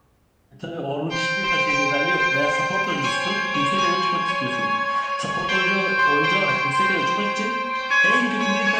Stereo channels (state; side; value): identical; both; correlation 1.00